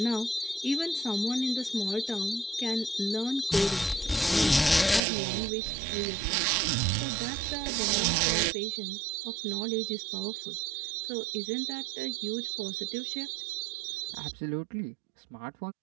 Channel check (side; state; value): left; drops out; at 5.0 s